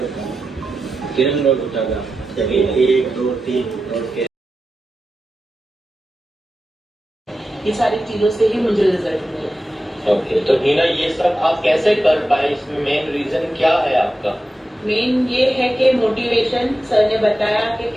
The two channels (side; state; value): both; normal; correlation 0.92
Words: किरण रोड उठागा चलिए 1 2 3 और के ये सारी चीजों से ही मुझे रिजल्ट मिले। ओके तो हीना ये सब आप कैसे कर पाए इसमें मेन रीजन क्या है आपका मेन ये है कि मोटिवेशन सर ने बताया कि